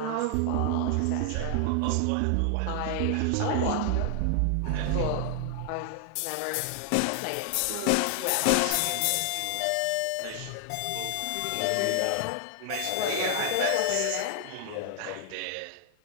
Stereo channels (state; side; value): different; both; correlation 0.00